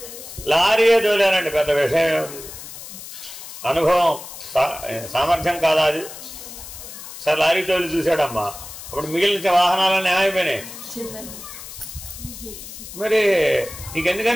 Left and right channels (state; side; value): noise; left; hiss, 13 dB below the sound